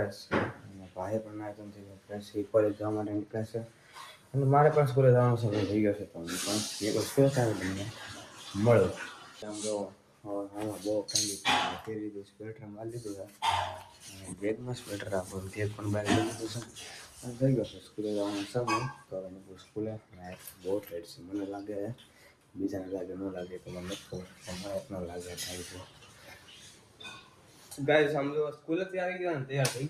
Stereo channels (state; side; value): identical; both; correlation 1.00